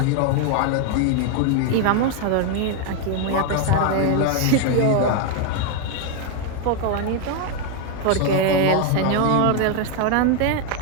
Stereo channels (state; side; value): different; both; correlation 0.01